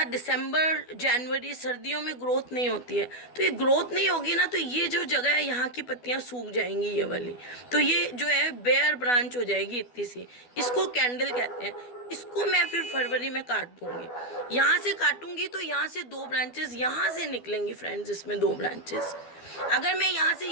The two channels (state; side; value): late; right; 12 ms